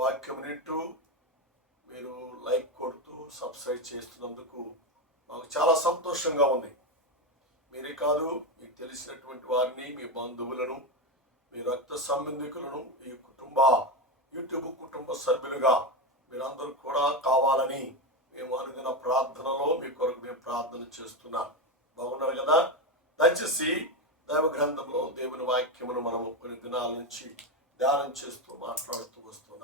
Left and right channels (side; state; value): both; normal; correlation 0.14